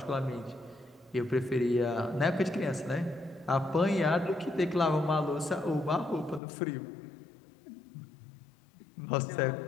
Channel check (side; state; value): right; drops out; at 6.4 s